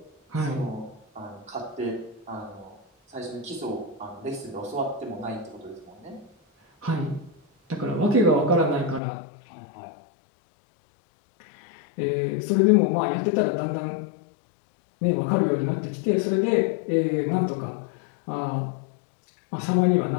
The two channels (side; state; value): right; drops out; at 9.0 s